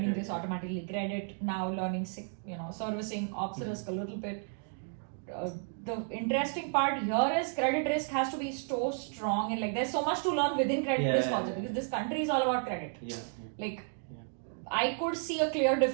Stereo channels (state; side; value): silent; left; 56 dB below the other